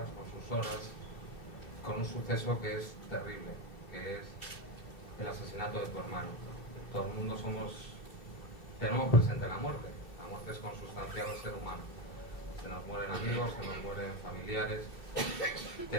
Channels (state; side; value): late; right; 2.7 ms